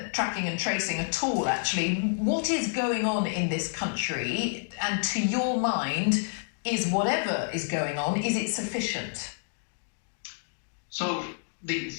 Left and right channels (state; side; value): silent; right; digital silence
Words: tracking and tracing at all, actually. What is going on in this country? And to your mind, is whatever is going on, is it sufficient? So the